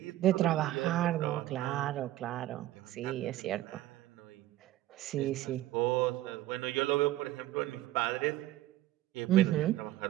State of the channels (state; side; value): quieter; left; 14.8 dB